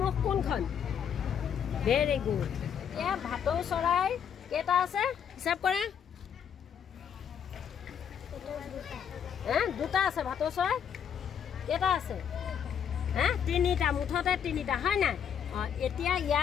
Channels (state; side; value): quieter; right; 8.2 dB